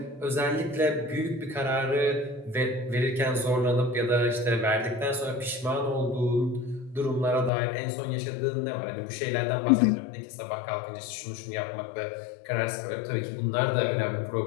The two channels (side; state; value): right; drops out; at 7.5 s